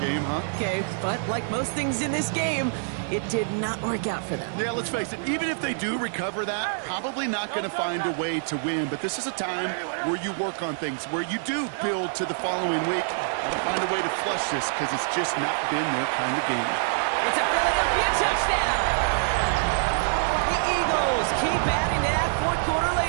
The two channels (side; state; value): left; silent; digital silence